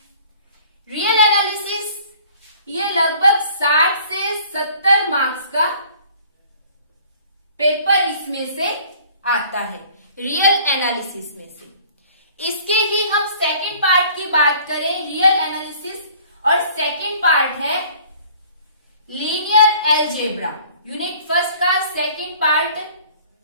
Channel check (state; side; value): inverted; both; correlation -0.52